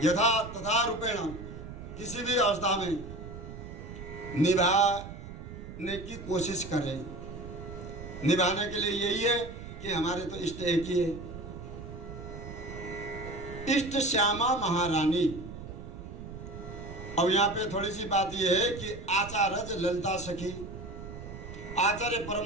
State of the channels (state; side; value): noise; right; rumble, 11 dB below the sound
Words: यथा तथा रूपेण किसी भी अवस्था में निभाने की कोशिश करें। निभाने के लिए यही है कि हमारे तो इष्ट एक ही है, इष्ट श्यामा महारानी। अब यहाँ पे थोड़ी सी बात यह है कि आचार्य ललिता सखी, आचार्य